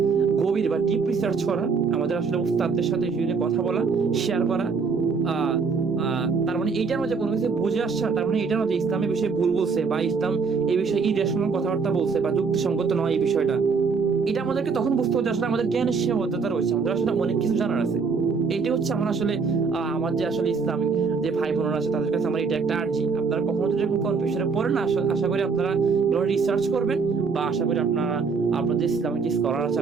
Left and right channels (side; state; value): left; quieter; 5.1 dB